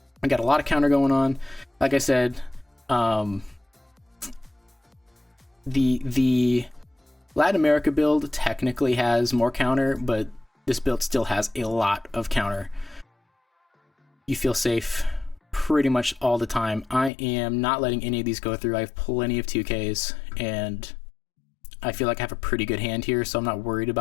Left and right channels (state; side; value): drops out; right; at 17.1 s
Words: I got a lot of counter going on. Like I said, the Latin America build technically has more counter, but this build still has a lot of counter. You feel safe pretty much all the time. I am not letting any of these go through. I have plenty of 2Ks, and I feel like I have a pretty good hand here, so I'm not worried